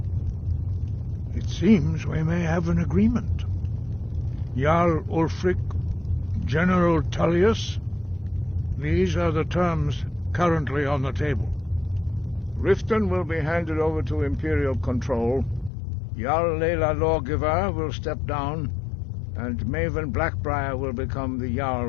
It seems we may have an agreement. Jarl Ulfric, General Tullius, these are the terms currently on the table. Riften will be handed over to Imperial control. Jarl Layla Lawgiver will step down, and Maven Blackbriar will become the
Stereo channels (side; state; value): right; drops out; at 15.7 s